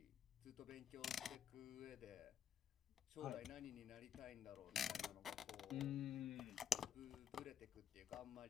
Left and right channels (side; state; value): right; quieter; 9.0 dB